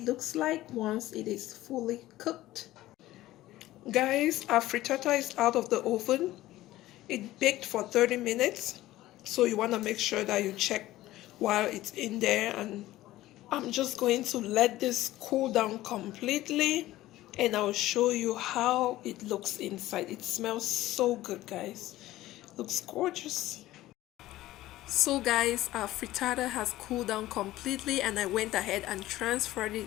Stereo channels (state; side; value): quieter; right; 15.9 dB